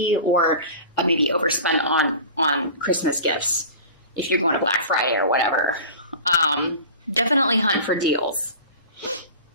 or maybe overspend on Christmas gifts if you're going to Black Friday or whatever. Definitely hunt for deals.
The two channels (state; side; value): inverted; both; correlation -0.37